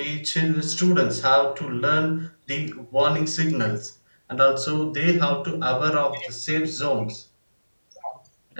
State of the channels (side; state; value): both; inverted; correlation -1.00